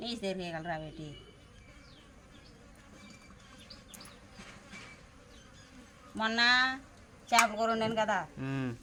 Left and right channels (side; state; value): both; identical; correlation 1.00